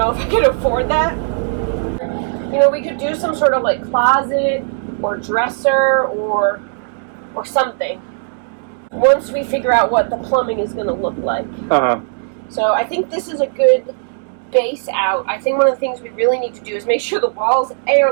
if I can afford that. You know, we could do some sort of like closet or dresser or something once we figure out what the plumbing is going to look like. So I think this is a good base out. I think one of the things we really need to do is make sure the walls A are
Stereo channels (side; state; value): left; silent; digital silence